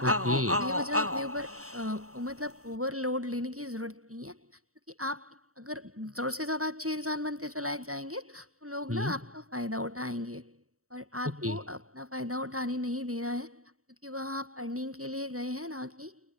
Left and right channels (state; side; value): late; left; 0.64 ms